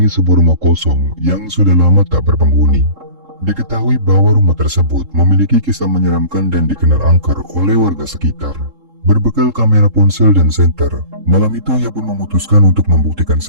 sebuah rumah kosong yang sudah lama tak berpenghuni. Diketahui bahwa rumah tersebut memiliki kisah menyeramkan dan dikenal angker oleh warga sekitar. Berbekal kamera ponsel dan senter, malam itu ia pun memutuskan untuk membuktikan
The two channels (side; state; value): left; late; 3.7 ms